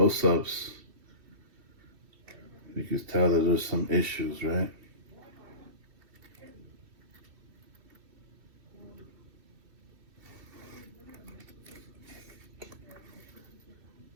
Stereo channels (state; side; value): late; left; 2.7 ms